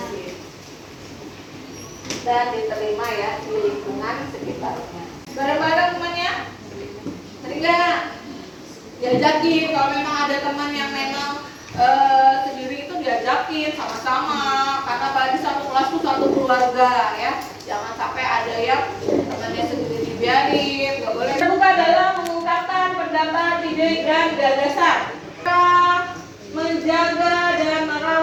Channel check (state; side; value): identical; both; correlation 1.00